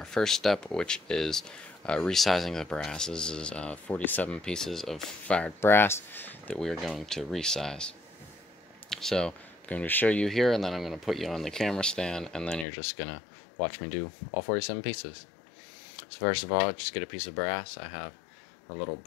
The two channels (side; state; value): right; drops out; at 12.7 s